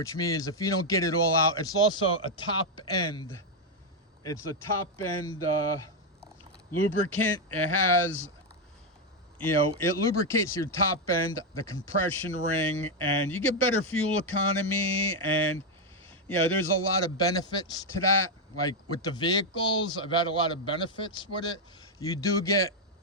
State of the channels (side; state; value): both; normal; correlation 0.02